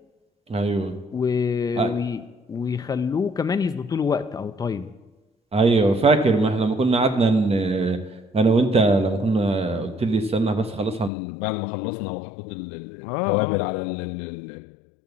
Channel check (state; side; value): drops out; right; at 11.1 s